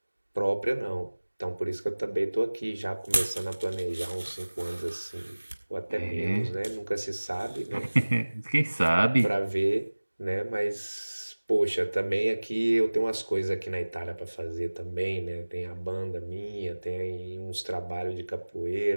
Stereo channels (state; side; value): inverted; both; correlation -1.00